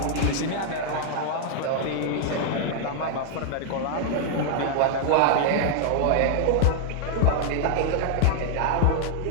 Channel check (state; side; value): different; both; correlation 0.00